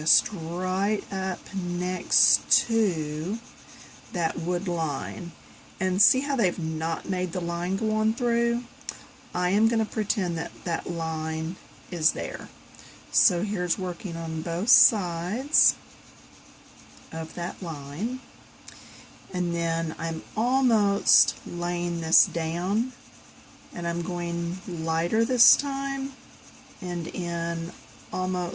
right up next to that wood line. And see how they've not made the line go on through? I am going to pretend that that line is there. So here's working on both sides of that line, and then I'm almost laying this down, and I'm going lighter this time and in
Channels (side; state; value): both; identical; correlation 1.00